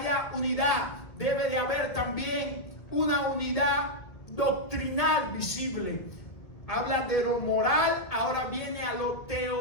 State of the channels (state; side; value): late; right; 1.5 ms